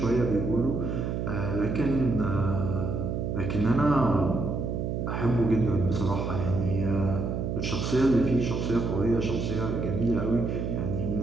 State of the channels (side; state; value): right; noise; hum, 2 dB below the sound